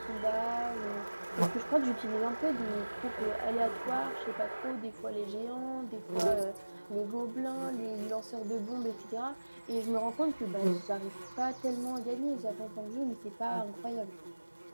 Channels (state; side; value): inverted; both; correlation -1.00